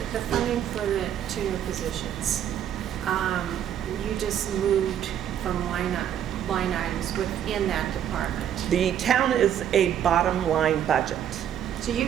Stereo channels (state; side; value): quieter; left; 9.8 dB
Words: funding for the 2 new positions, you just moved from line items within that department. The town is a bottom line budget. So you